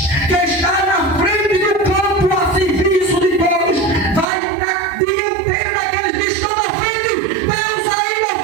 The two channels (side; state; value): left; drops out; at 4.2 s